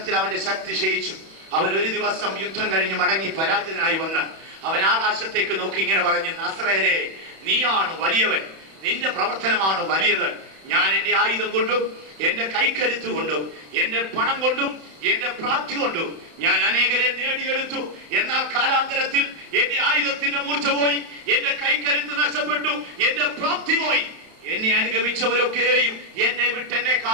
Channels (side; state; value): left; late; 31 ms